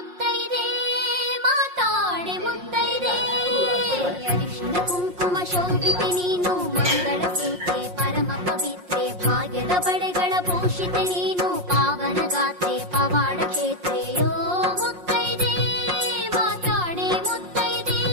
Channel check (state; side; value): late; left; 5.6 ms